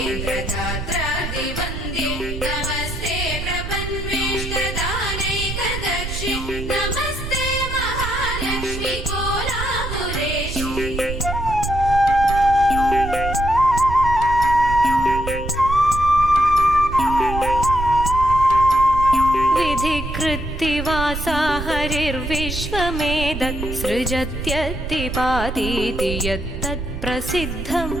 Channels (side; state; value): right; noise; rumble, 6 dB below the sound